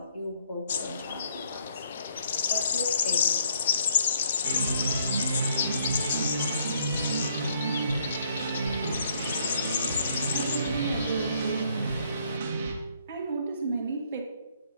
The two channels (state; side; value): inverted; both; correlation -0.67